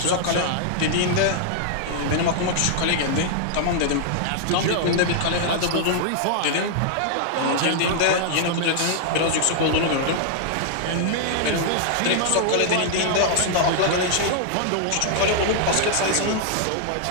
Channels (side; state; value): both; different; correlation -0.01